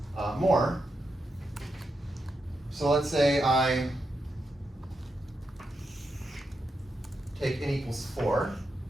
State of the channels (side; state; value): both; normal; correlation 0.85